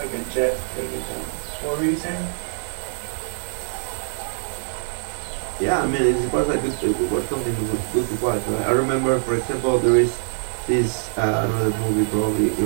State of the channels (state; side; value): silent; left; digital silence